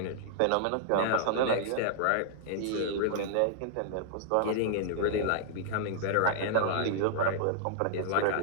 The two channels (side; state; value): both; different; correlation -0.01